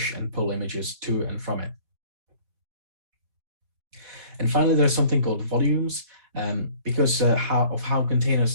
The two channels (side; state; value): left; late; 4.2 ms